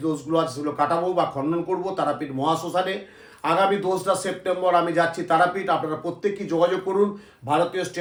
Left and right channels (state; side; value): identical; both; correlation 1.00